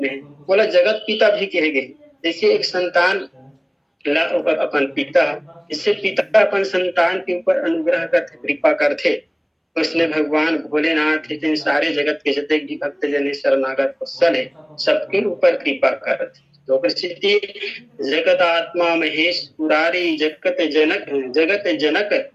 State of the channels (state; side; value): identical; both; correlation 1.00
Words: है। बोला जगत पिता भी कहे गए। जैसे एक संतान अपन पिता, इससे पिता अपन संतान के ऊपर अनुग्रह करते, कृपा करते। उसने भगवान भोलेनाथ इतने सारे जगत के जितने भी भक्त जन शरणागत वत्सल है सबके ऊपर कृपा करते। तो प्रसिद्धि जगत आत्मा महेश पुरारी जगत जनक